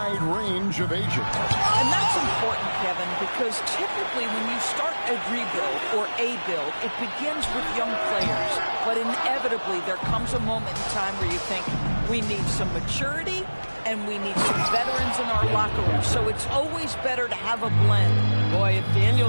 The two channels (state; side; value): inverted; both; correlation -1.00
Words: range of ages. And that's important, Kevin, because typically when you start a rebuild or a build, it begins with young players. But inevitably, there comes a moment in time where you think, we need some maturity and we need some veterans in our locker room. So it's always better to have a blend. Boy, if